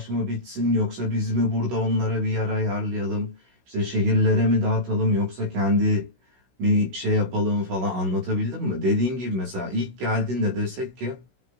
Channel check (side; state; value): left; late; 16 ms